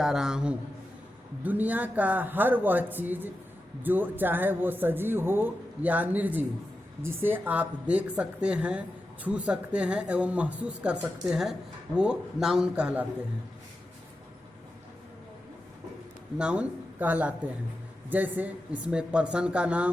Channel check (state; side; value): normal; both; correlation 0.90